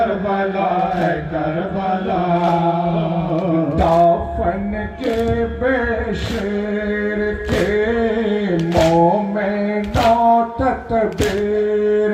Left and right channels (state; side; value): identical; both; correlation 1.00